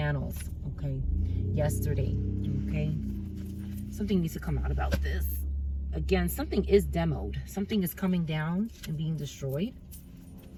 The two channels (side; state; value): both; identical; correlation 1.00